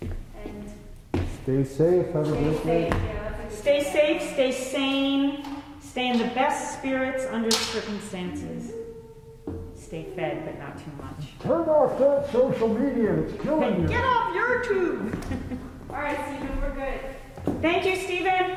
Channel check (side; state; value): both; identical; correlation 1.00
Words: And Stay safe, have a stay great safe. day. Yeah, that's a good Stay thing. safe, stay sane, stay in the best spirits under circumstances. Stay fed, but not too much. Turn off that social media, it's killing And you. get off YouTube. All right, Stephen, we're good. Thank you, Stephen.